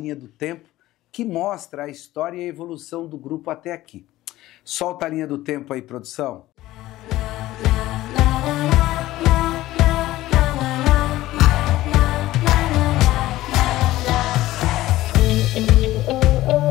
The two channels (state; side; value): quieter; right; 16.2 dB